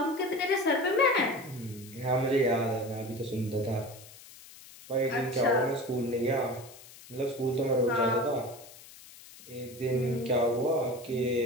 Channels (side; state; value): left; noise; hiss, 19 dB below the sound